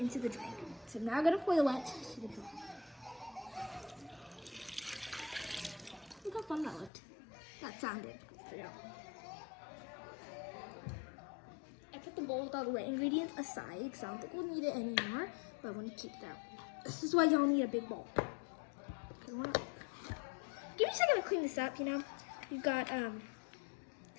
the drink. So now I'm gonna boil it. Look how fun that looked. That sounded. I put the bowl with all the wet ingredients aside because I don't think we'll need it anymore. But I want to keep that. This is why y'all need a big bowl. Give me a second to clean this up, you know. We've got a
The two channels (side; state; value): right; drops out; at 6.9 s